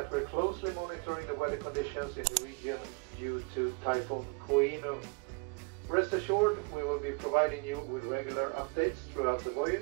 we're closely monitoring the weather conditions in the region due to Typhoon Koino. Rest assured, we will be providing you with regular updates throughout the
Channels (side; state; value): left; quieter; 32.5 dB